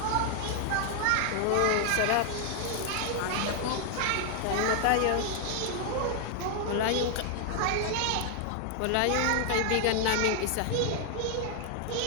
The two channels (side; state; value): both; different; correlation 0.00